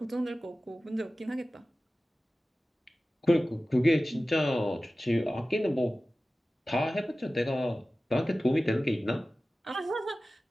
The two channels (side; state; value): both; normal; correlation 0.96